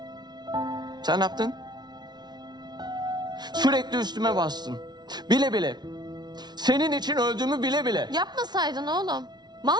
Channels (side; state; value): left; late; 0.20 ms